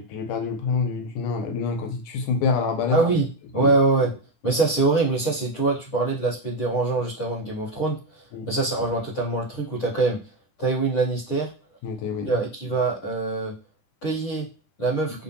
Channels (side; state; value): right; late; 10 ms